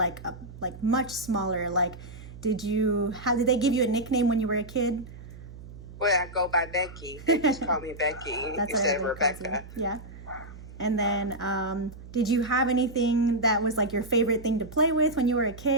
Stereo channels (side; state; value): right; noise; hum, 15 dB below the sound